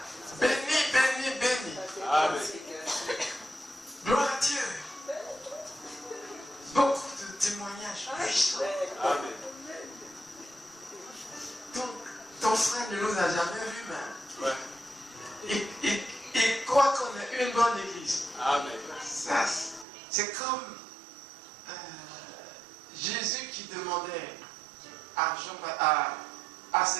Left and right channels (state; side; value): drops out; left; at 19.9 s